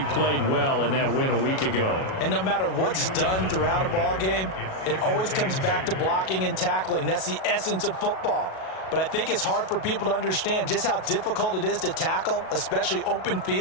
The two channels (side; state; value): right; late; 37 ms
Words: played well in that win a week ago. And no matter what's done throughout a ball game, it always comes back to blocking and tackling. That's the essence of football. But I think it's hard for people to understand just how difficult it is to tackle, especially open